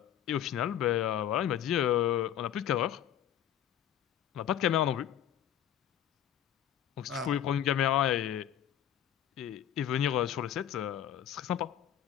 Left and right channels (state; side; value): quieter; right; 10.6 dB